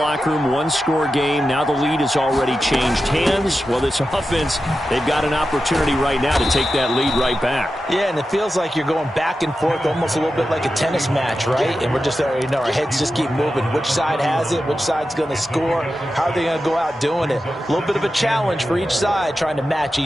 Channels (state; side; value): normal; both; correlation 0.91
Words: room, one-score game. Now the lead has already changed hands. Well, this offense, they've got an opportunity right now to take that lead right back. Yeah, and it feels like you're going back and forth almost a little bit like a tennis match, right? And we're just, you know, our heads just keep moving. Which side has it? Which side's going to score? How are they going to go out doing it? A little bit of a challenge for each side trying to match